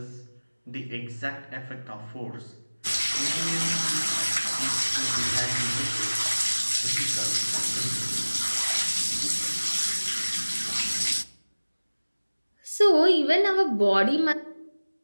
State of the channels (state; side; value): inverted; both; correlation -1.00